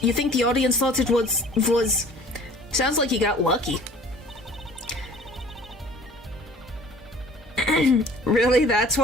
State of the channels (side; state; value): both; normal; correlation 0.49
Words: you think the audience thought it was... Sounds like you got lucky. Really? That's